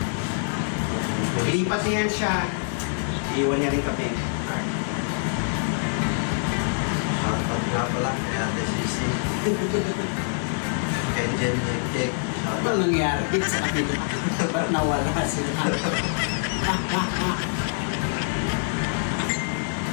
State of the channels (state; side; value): silent; right; digital silence